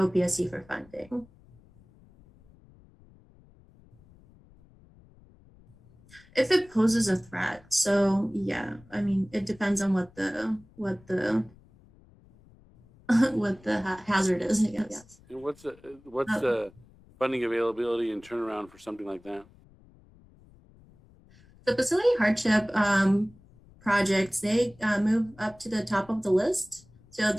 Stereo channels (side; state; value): left; noise; rumble, 27 dB below the sound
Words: for funding. If it poses a threat, so yeah, I mean, it depends on what the hazard is, I guess. And what's the funding availability and turnaround for something like that? The facility hardship projects, they move up to the top of the list. So